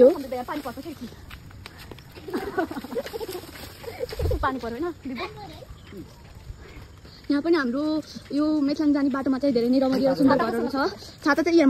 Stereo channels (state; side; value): identical; both; correlation 1.00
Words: हो पानी पर्दैन यहाँ पनि हाम्रो यो मेचलाङ जाने बाटोमा चाहिँ धेरै नै रमाइलो सुन्दर घरहरू छ छाता चाहिँ यहाँ